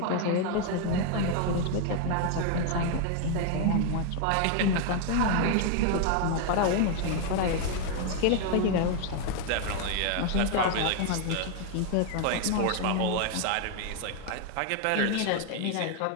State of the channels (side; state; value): both; different; correlation 0.00